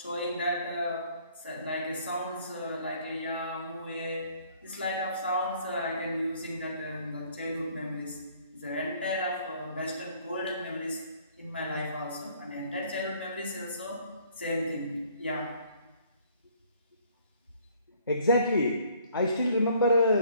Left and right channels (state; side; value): inverted; both; correlation -0.60